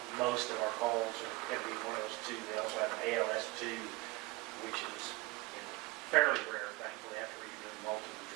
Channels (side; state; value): left; quieter; 21.9 dB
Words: Most of our calls are going to be one of those two. We also have an ALS2, which is, you know, fairly rare, thankfully, after you're doing multiple